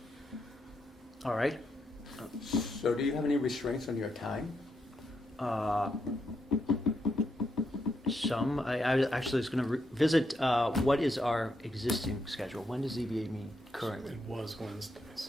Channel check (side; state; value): both; normal; correlation 0.80